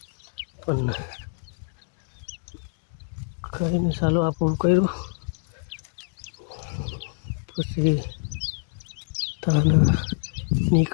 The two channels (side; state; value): right; silent; digital silence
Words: પણ કરીને ચાલો આ પૂરું કર્યું પછી તને